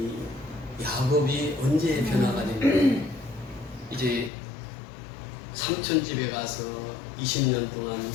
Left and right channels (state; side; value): drops out; right; at 4.3 s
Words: 야곱이 언제 변화가 됐냐? 이제 삼촌 집에 가서 20년 동안